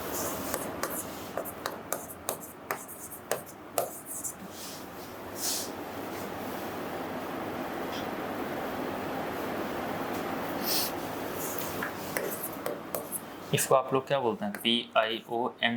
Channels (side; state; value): both; identical; correlation 1.00